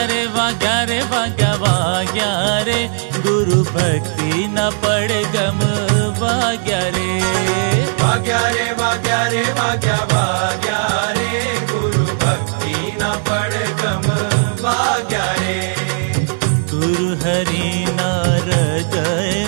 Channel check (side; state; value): left; silent; 58 dB below the other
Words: रे वाग्या रे वाग्या वाग्या रे गुरु भक्ति न पड़ गम वाग्या रे वाग्या रे वाग्या रे वाग्या वाग्या रे गुरु भक्ति न पड़ गम वाग्या रे गुरु हरि ना